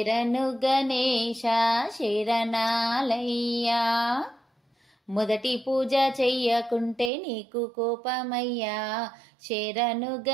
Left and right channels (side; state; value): left; drops out; at 7.1 s